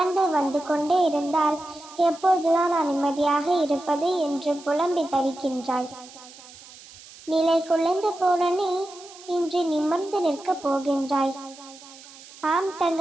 வந்து கொண்டே இருந்தால் எப்பொழுதுதான் நான் நிம்மதியாக இருப்பது என்று புலம்பி தவிக்கின்றாய். நிலை குலைந்து போன நீ இன்று நிமிர்ந்து நிற்கப் போகின்றாய். ஆம்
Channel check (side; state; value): right; noise; hiss, 20 dB below the sound